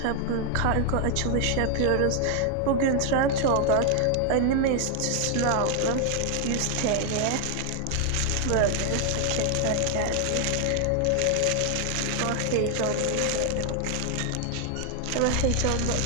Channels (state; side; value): different; both; correlation 0.00